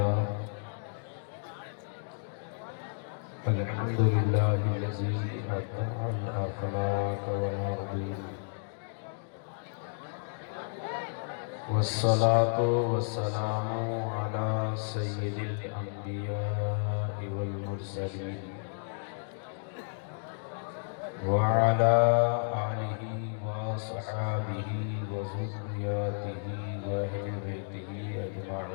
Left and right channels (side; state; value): right; silent; digital silence